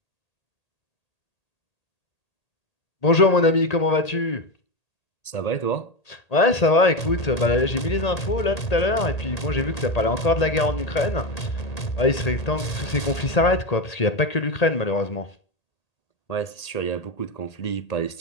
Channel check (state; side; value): late; right; 1.8 ms